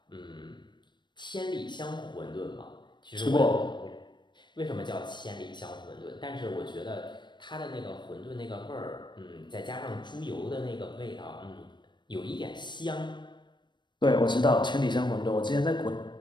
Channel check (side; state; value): right; late; 0.22 ms